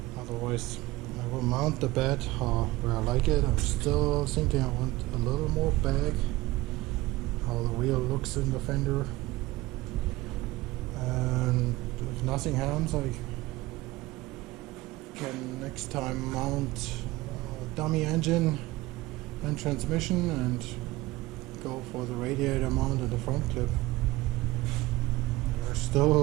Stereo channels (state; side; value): quieter; left; 18.8 dB